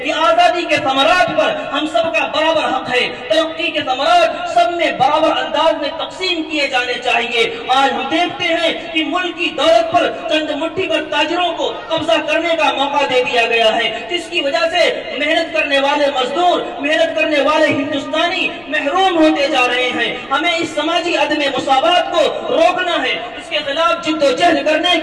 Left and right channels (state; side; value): noise; left; rumble, 28 dB below the sound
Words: کہ آزادی کے ثمرات پر ہم سب کا برابر حق ہے، ترقی کے ثمرات سب میں برابر انداز میں تقسیم کیے جانے چاہیے۔ آج ہم دیکھتے ہیں کہ ملک کی دولت پر چند مٹھی پر تاجروں کو قبضہ کرنے کا موقع دے دیا گیا ہے، جس کی وجہ سے محنت کرنے والے مزدور، محنت کرنے والے ہندوستانی محروم ہوتے جا رہے ہیں۔ ہمیں اس سماجی عدم مساوات کو روکنا ہے، اس کے خلاف جد و جہد کرنے